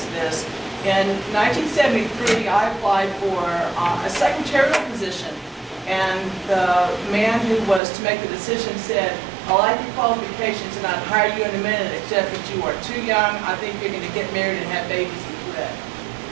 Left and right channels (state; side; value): drops out; left; at 7.8 s